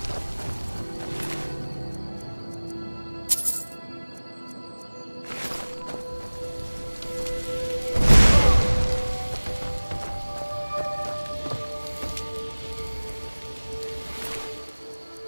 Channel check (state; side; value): inverted; both; correlation -1.00